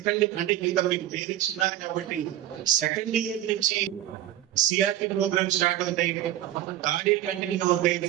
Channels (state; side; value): quieter; left; 13.0 dB